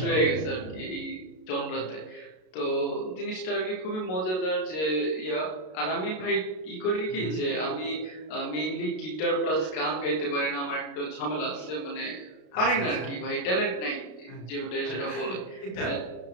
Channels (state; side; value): late; right; 32 ms